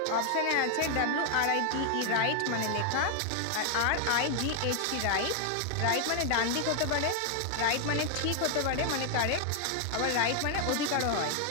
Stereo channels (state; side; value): different; both; correlation 0.00